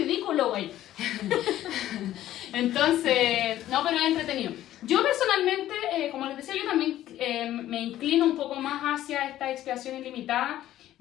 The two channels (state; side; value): quieter; right; 13.3 dB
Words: güey. Entonces, no, pero es entretenido. Yo personalmente, como les decía, yo también me inclino un poco más hacia esta expiación ilimitada.